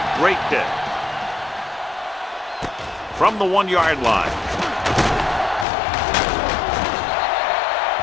great kick. From the 1-yard line.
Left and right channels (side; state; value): right; drops out; at 5.7 s